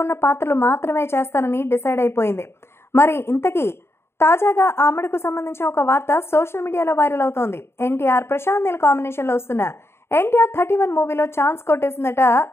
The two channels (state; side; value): late; right; 0.12 ms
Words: ఉన్న పాత్రలు మాత్రమే చేస్తానని డిసైడ్ అయిపోయింది. మరి ఇంతకీ తాజాగా ఆమెడకు సంబంధించిన ఒక వార్త సోషల్ మీడియాలో వైరల్ అవుతోంది. ఎన్టీఆర్ ప్రశాంత్ నీల్ కాంబినేషన్ లో వస్తున్న ఎన్టీఆర్ 31 మూవీలో ఛాన్స్ కొట్టేసిందట